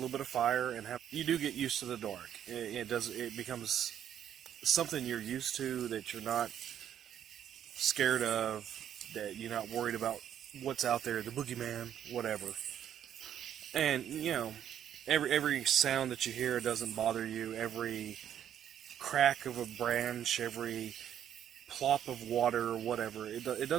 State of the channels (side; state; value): left; quieter; 10.0 dB